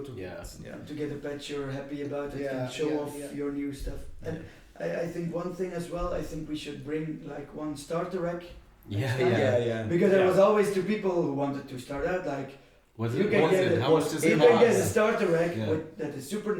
get a patch you're happy about it and show off your new stuff. And I think one thing as well, I think we should bring like one starter rack. Because there was always 2 people who wanted to start out like. How much does it you cost? can get a starter rack that is super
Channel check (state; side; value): identical; both; correlation 1.00